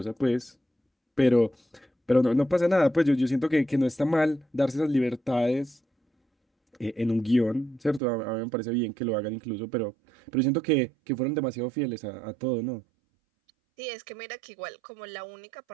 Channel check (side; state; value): left; drops out; at 8.0 s